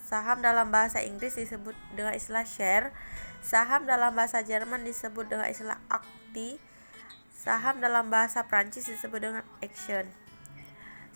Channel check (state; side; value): inverted; both; correlation -1.00